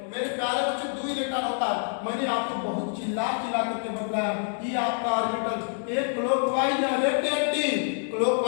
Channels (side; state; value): right; silent; 59 dB below the other